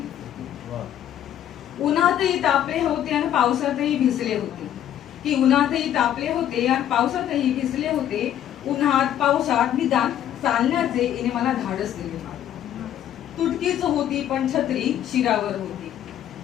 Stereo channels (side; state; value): right; quieter; 10.9 dB